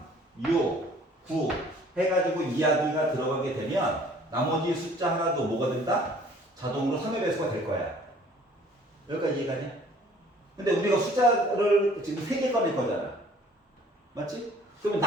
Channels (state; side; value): normal; both; correlation 0.54